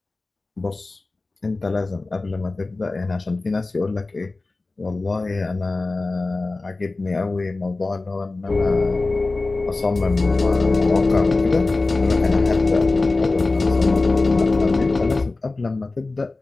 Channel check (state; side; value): quieter; right; 3.4 dB